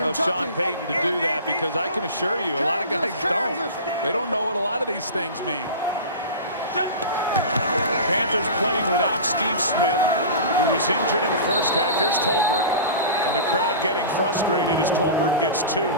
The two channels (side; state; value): both; inverted; correlation -0.33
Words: Sean Payton to do that, because I can assure you a lot of guys don't. They don't know what a lot of these things mean. Panthers playing without Steve Smith, who was injured in the first half. Here's Tolbert, and the crowd getting frustrated as Tolbert gets 2.